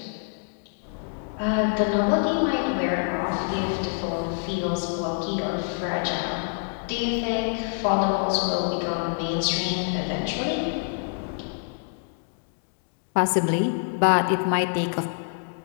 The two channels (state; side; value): silent; right; 61 dB below the other